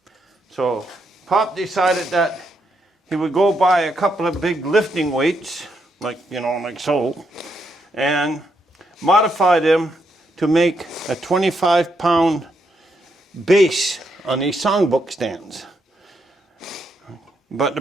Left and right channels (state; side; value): normal; both; correlation 0.78